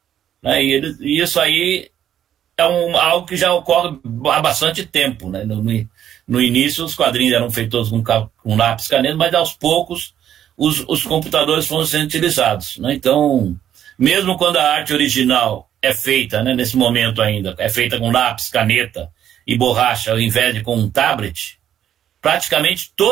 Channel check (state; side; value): quieter; left; 10.3 dB